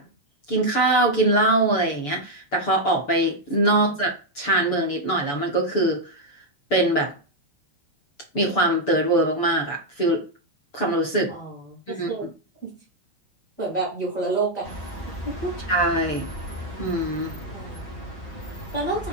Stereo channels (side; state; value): right; late; 6.9 ms